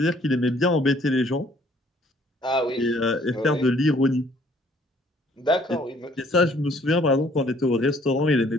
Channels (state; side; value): normal; both; correlation 0.61